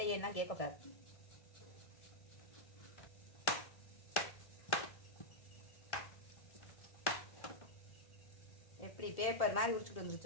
கேட்கக்கூடாது. எப்படி பேப்பர் மாதிரி உரிச்சுட்டு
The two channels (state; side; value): late; right; 1.8 ms